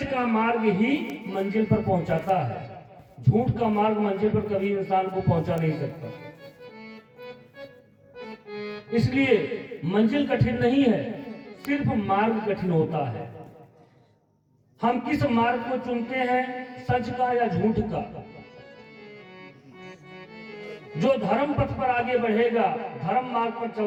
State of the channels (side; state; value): both; identical; correlation 1.00